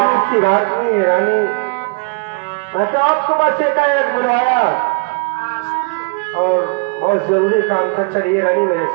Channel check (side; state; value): left; quieter; 32.4 dB